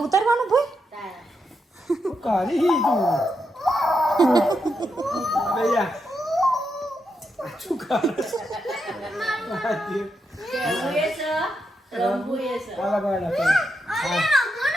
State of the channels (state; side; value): normal; both; correlation 0.83